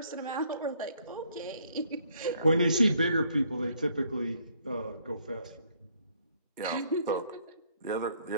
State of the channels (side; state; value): both; inverted; correlation -0.66